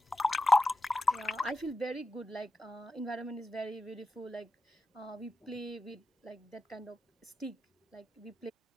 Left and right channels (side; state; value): both; normal; correlation 0.91